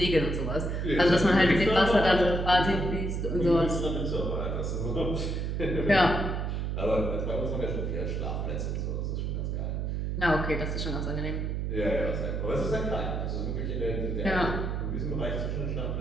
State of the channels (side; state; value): right; noise; hum, 1 dB below the sound